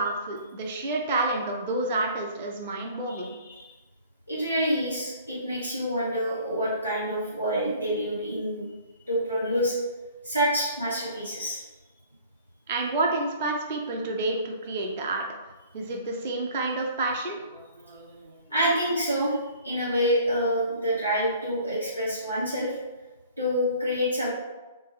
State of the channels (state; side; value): inverted; both; correlation -0.51